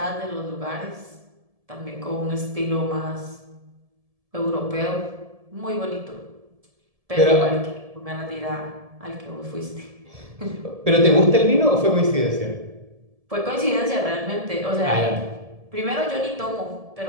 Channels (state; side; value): late; left; 1.7 ms